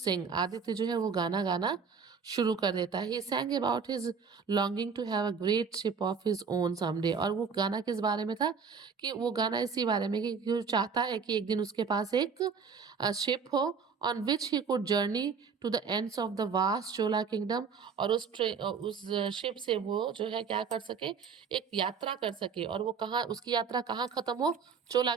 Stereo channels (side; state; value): left; quieter; 5.9 dB